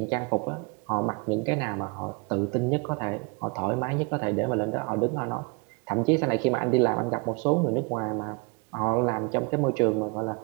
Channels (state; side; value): quieter; left; 30.3 dB